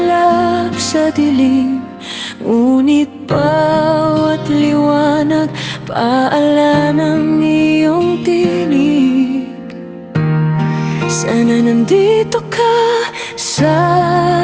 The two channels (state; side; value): identical; both; correlation 1.00